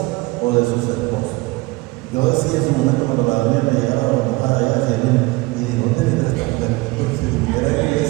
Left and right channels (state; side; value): quieter; left; 22.8 dB